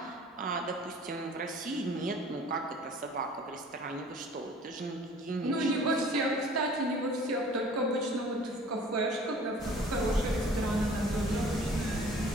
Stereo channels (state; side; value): normal; both; correlation 0.50